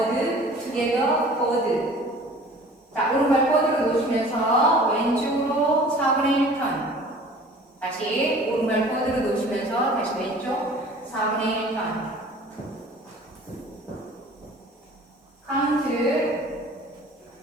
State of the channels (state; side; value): normal; both; correlation 0.47